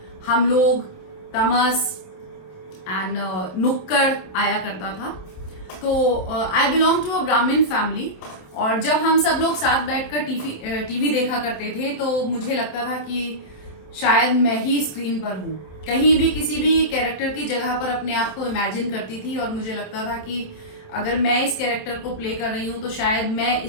हम लोग, तमस एंड नुक्कड़ आया करता था। तो आई बिलोंग टू अ ब्राह्मण फैमिली और जब हम सब लोग साथ बैठकर टीवी देखा करते थे तो मुझे लगता था कि शायद मैं ही स्क्रीन पर हूँ। कहीं भी किसी भी कैरेक्टर की जगह पर अपने आप को इमेजिन करती थी और मुझे लगता था कि अगर मैं इस कैरेक्टर को प्ले कर रही हूँ तो शायद मैं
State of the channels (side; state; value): right; late; 27 ms